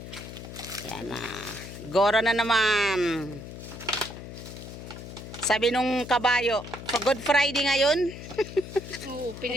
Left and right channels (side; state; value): left; noise; hum, 11 dB below the sound